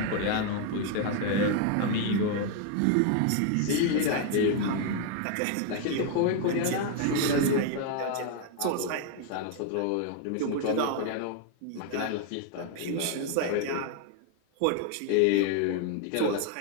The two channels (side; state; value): both; different; correlation 0.00